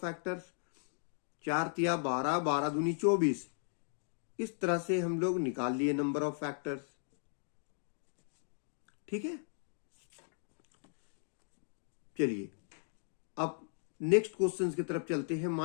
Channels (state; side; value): silent; right; digital silence